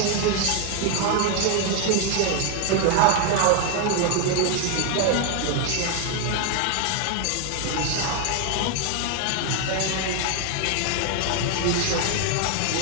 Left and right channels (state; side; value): different; both; correlation 0.01